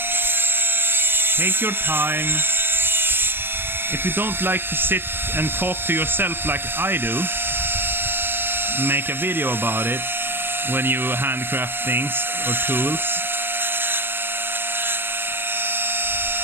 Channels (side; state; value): left; late; 0.10 ms